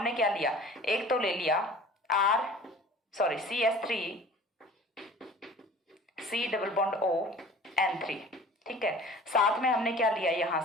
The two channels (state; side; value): normal; both; correlation 0.44